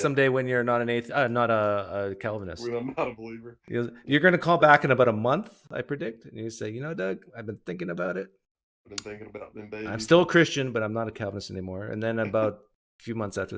when you're not not a Calvinist. When I'm not a believer. You're going to call back in about a month, I predict, and you say, Doug, I've been thinking about it. I've been thinking about them babies. I'm still a Christian, but I'm not a Calvinist anymore. And then about a few months after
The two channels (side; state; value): both; identical; correlation 1.00